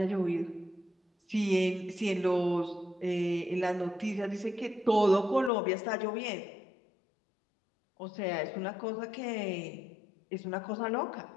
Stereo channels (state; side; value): drops out; right; at 5.5 s